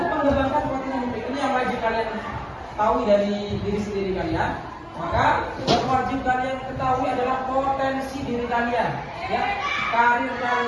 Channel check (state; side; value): identical; both; correlation 1.00